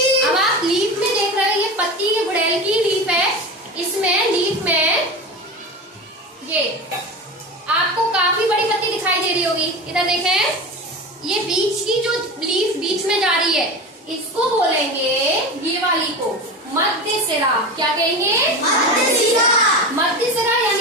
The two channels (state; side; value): normal; both; correlation 0.27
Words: अब आप लीफ में देख रहे हो, ये पत्ती के गुड़ैल की लीफ है, इसमें लीफ में ये आपको काफी बड़ी पत्ती दिखाई दे रही होगी, इधर देखें, ये बीच की जो लीफ बीच में जा रही है, इसको बोलेंगे, ये वाली को मध्य सिरा। क्या कहेंगे? मध्य सिरा। मध्य सिरा